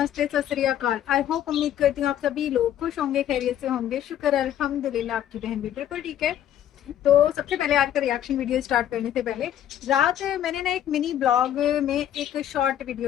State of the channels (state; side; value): quieter; right; 11.0 dB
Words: सत श्री अकाल। आई होप, उम्मीद करती हूँ आप सभी लोग खुश होंगे, खैरियत से होंगे। शुक्र अल्हम्दुलिल्लाह, आपकी बहन भी बिल्कुल ठीक है। तो सबसे पहले आज का रिएक्शन वीडियो स्टार्ट करने से पहले, रात मैंने ना एक मिनी ब्लॉग में एक शॉर्ट वीडियो